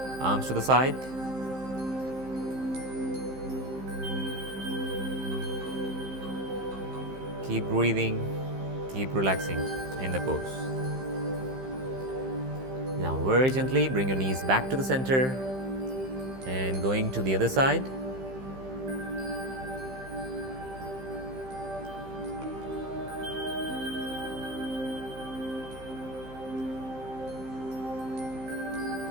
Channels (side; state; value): left; late; 15 ms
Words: Arms to the side. Keep breathing, keep relaxing in the pose. Now very gently bring your knees back to the center and going to the other side.